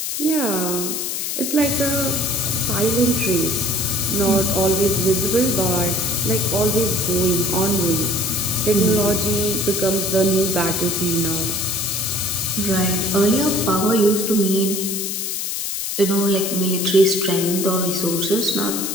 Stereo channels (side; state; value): left; noise; hiss, 3 dB below the sound